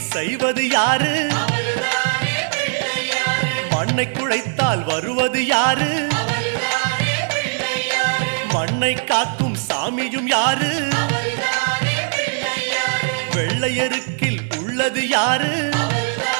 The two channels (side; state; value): left; silent; 66 dB below the other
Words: செய்வது யாரு? மண்ணை குழைத்தால் வருவது யாரு? மண்ணை காக்கும் சாமியும் யாரு? வெள்ளையருக்கில் உள்ளது யாரு?